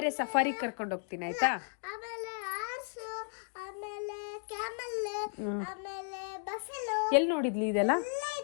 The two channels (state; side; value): silent; right; 55 dB below the other